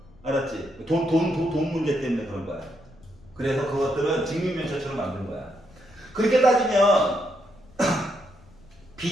알았지? 돈 문제 때문에 그런 거야. 그래서 그것들은 직육면체처럼 만든 거야. 그렇게 따지면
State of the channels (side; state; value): left; noise; rumble, 26 dB below the sound